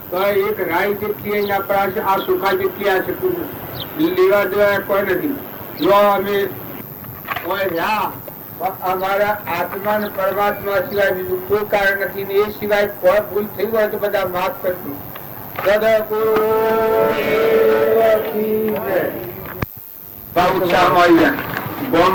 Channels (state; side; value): identical; both; correlation 1.00